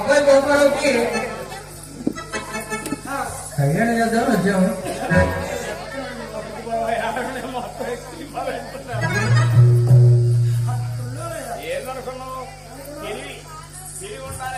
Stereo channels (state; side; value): identical; both; correlation 1.00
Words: గోపాలకి కళ్యాణం చేద్దాం వచ్చాము. ఏదనుకున్నావు